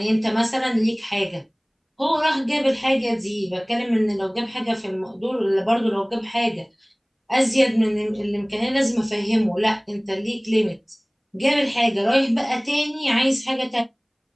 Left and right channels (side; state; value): both; identical; correlation 1.00